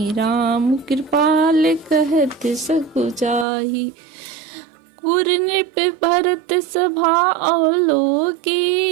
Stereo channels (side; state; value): left; drops out; at 3.5 s